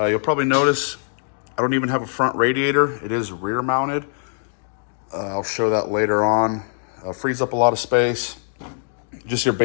probably notice I don't even have a front radiator. It is rear mounted. I'll show that later on. Frees up a lot of space. Just your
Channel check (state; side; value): silent; right; digital silence